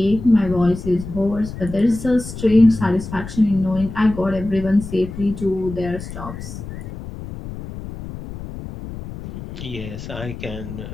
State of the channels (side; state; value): left; noise; rumble, 10 dB below the sound